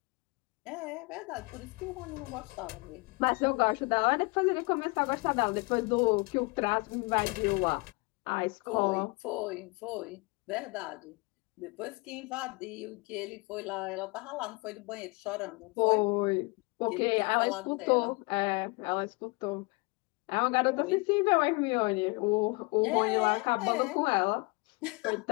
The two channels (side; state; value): right; quieter; 28.0 dB